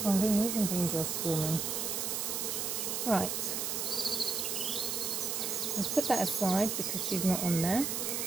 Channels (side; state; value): right; noise; hiss, 1 dB below the sound